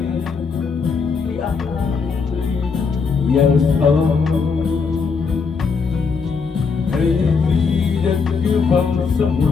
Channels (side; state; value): right; quieter; 5.2 dB